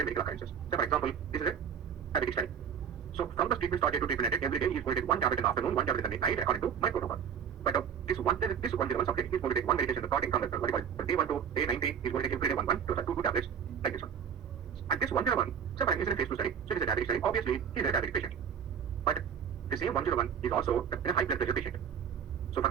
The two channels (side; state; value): left; quieter; 7.7 dB